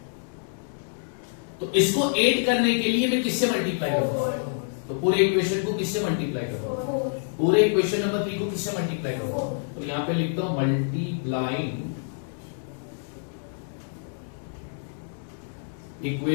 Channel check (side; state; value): right; silent; digital silence